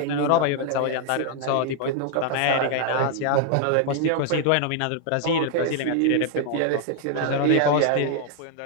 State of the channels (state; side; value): different; both; correlation 0.00